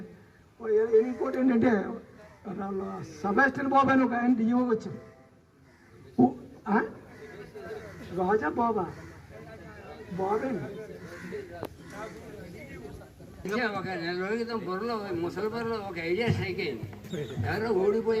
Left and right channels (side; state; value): both; identical; correlation 1.00